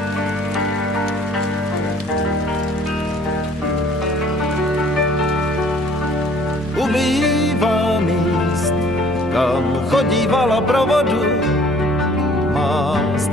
Ubývá míst, kam chodívala pro vodu má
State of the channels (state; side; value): normal; both; correlation 0.56